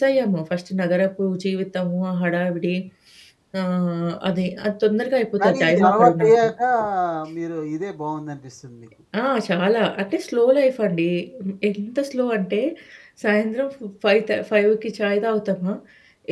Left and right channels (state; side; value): identical; both; correlation 1.00